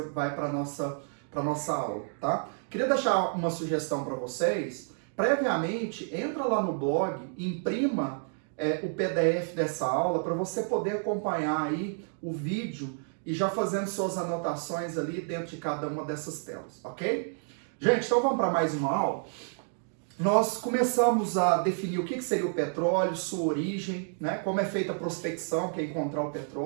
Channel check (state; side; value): silent; left; 58 dB below the other